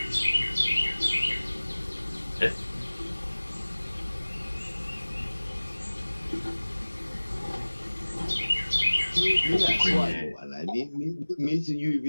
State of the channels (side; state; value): both; inverted; correlation -1.00